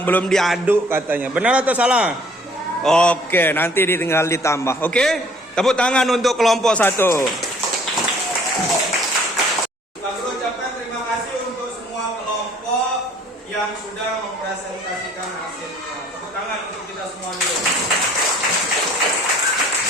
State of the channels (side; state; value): both; normal; correlation 0.56